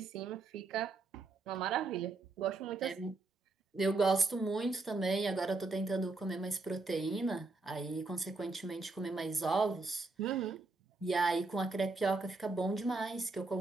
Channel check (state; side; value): quieter; left; 3.5 dB